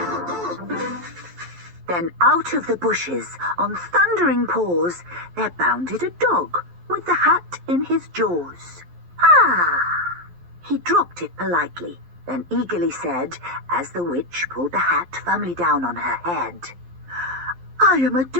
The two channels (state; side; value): late; left; 11 ms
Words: Then out of the bushes, on thundering paws, there bounded a dog with the hat in his jaws. Ah! He dropped it politely, then eagerly said, as the witch pulled the hat firmly down on her head, "I am a